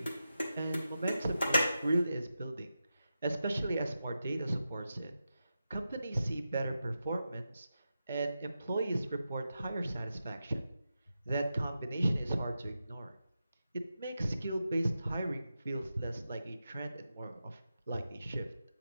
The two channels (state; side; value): inverted; both; correlation -0.90